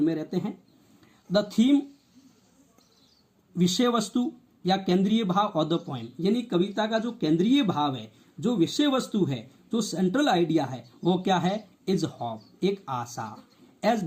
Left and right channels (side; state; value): both; identical; correlation 1.00